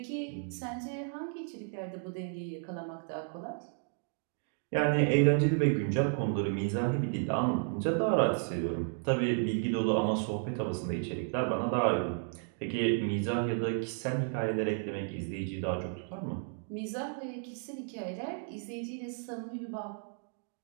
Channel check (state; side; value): silent; left; 56 dB below the other